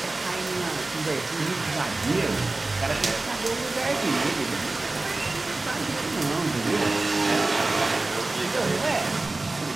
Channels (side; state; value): left; quieter; 3.1 dB